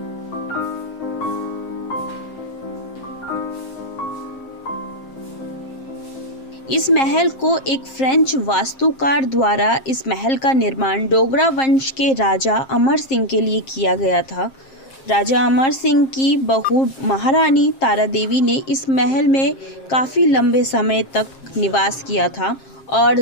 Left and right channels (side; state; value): right; late; 7.5 ms